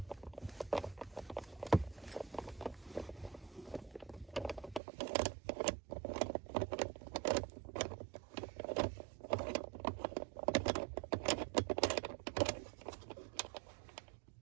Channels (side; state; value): left; drops out; at 4.8 s